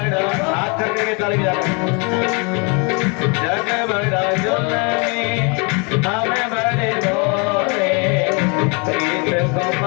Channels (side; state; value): right; quieter; 32.8 dB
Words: हाथ करके ताली बजाओ। जग बड़ा जुलमी हमें बड़े भोले, प्रीत को